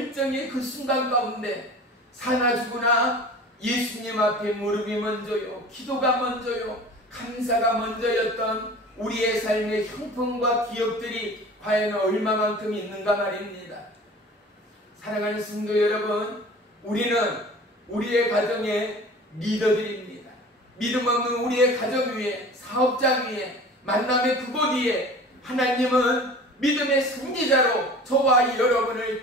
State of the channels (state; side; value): normal; both; correlation 0.41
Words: 그 순간 가운데 사나 죽으나 예수님 앞에 무릎이 먼저요, 기도가 먼저요, 감사가 먼저였던 우리의 삶의 형편과 기억들이 과연 얼마만큼 있는가 말입니다. 사랑하는 성도 여러분, 우리는 우리의 가정의 리더들입니다. 믿음 없는 우리의 가정 위에, 사업장 위에, 만남의 그곳 위에 하나님은 믿음의 선지자로 저와 여러분을